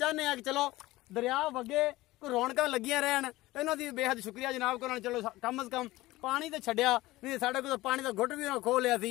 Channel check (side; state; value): right; quieter; 18.4 dB